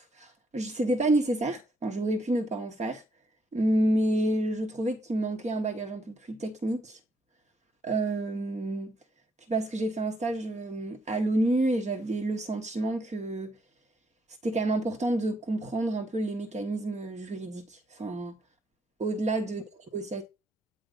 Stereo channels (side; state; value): both; normal; correlation 0.74